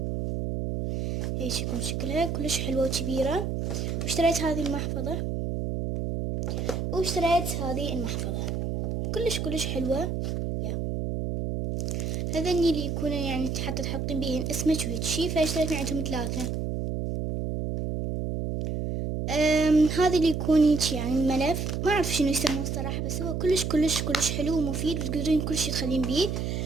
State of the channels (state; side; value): noise; right; hum, 2 dB below the sound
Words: هيك يكون شكلها كلش حلوة وكبيرة. واشتريت هذه المحفظة، واشتريت هذه المحفظة كلش حلوة. هذني اللي يكونوا يعني حتى تحطين بيهن اسمك وهيك شي، فاشتريت من عندهم 3. هذا اللي يكون هيك يعني ملف، ما اعرف شنو يسموه الصراحة، بس هو كلش حلو ومفيد، وتقدرين كل شي تخلين بيه.